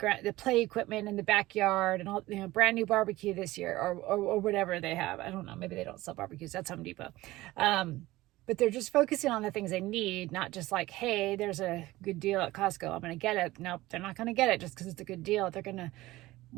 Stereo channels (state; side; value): quieter; left; 18.0 dB